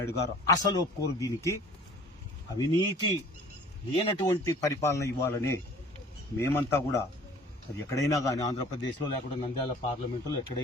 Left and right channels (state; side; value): normal; both; correlation 0.48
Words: గారు అసలు ఒప్పుకోరు దీనికి. అవినీతి లేనటువంటి పరిపాలన ఇవ్వాలని మేమంతా కూడా, అది ఎక్కడైనా కానీ ఆంధ్రప్రదేశ్లో లేకుండా నంద్యాల పార్లమెంటులో